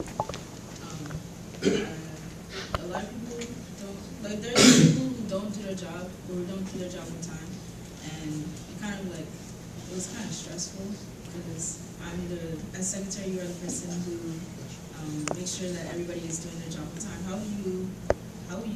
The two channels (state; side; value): identical; both; correlation 1.00